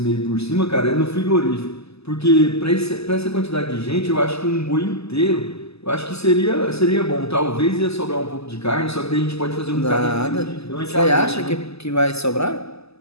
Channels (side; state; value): right; late; 0.79 ms